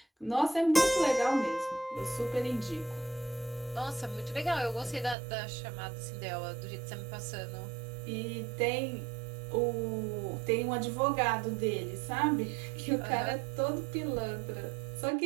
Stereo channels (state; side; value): drops out; left; at 5.2 s